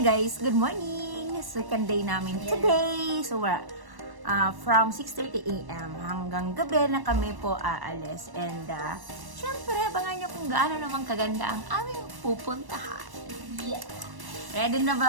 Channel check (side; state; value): left; late; 1.1 ms